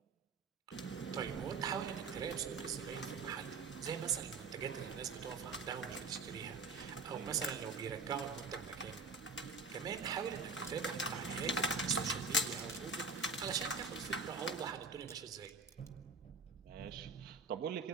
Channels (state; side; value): quieter; left; 4.0 dB